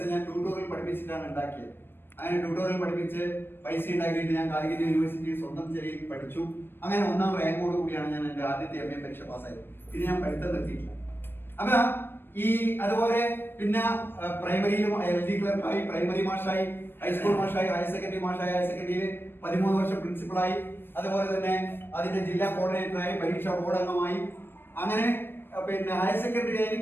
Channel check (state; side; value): late; right; 0.10 ms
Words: ഞാൻ ട്യൂട്ടോറിയൽ പഠിപ്പിച്ചിട്ടാണ് ഉണ്ടാക്കിയത്. അങ്ങനെ ട്യൂട്ടോറിയൽ പഠിപ്പിച്ച് പൈസ ഉണ്ടാക്കിയിട്ട് ഞാൻ കാലിക്കറ്റ് യൂണിവേഴ്സിറ്റിയിൽ സ്വന്തം ചെറിയ പഠിച്ചു. അങ്ങനെ 1ാം റാങ്കോട് കൂടിയാണ് ഞാൻ എൻ്റെ ആദ്യത്തെ MA പരീക്ഷ പാസ്സായത്. പിന്നെ ഞാൻ പഠിത്തം നിർത്തിയിട്ടില്ല. അപ്പൊ അതുപോലെ പിന്നെ പ്രൈമറിയിലും LD ക്ലർക്കായി, പ്രൈമറി മാഷായി, ഹൈസ്കൂൾ മാഷായി, ഹയർ സെക്കൻഡറി മാഷായി, ഹയർ സെക്കൻഡറിയിൽ 13 വർഷം പ്രിൻസിപ്പളായി, അതുപോലെ തന്നെ അതിന്റെ ജില്ലാ കോർഡിനേറ്ററായി, പരീക്ഷാ ബോർഡ് അംഗമായി. അങ്ങനെ പിന്നെ ഹയർ സെക്കൻഡറി